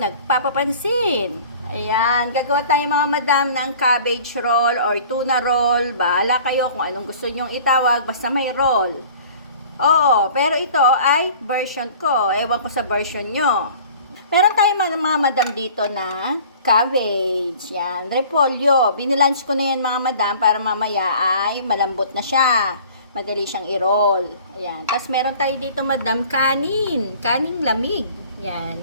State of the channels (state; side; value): inverted; both; correlation -0.47